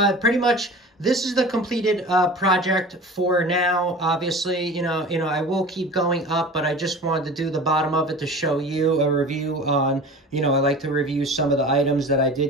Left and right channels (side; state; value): both; normal; correlation 0.38